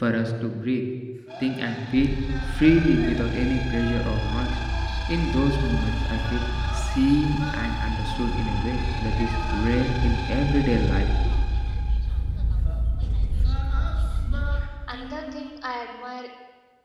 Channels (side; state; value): both; identical; correlation 1.00